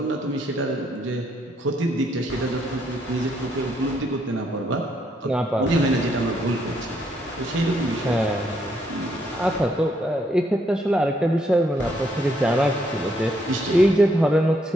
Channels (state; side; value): normal; both; correlation 0.73